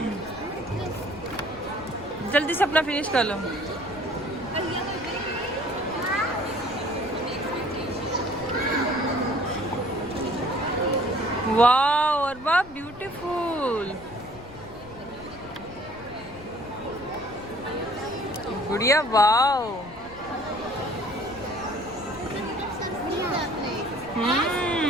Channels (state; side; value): noise; left; rumble, 19 dB below the sound